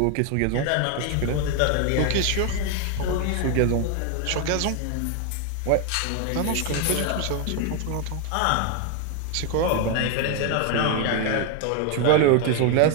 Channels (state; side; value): different; both; correlation 0.01